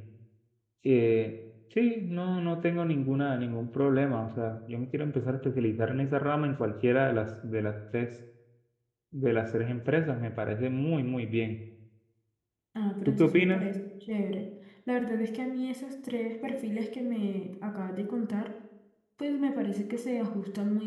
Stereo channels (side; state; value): both; identical; correlation 1.00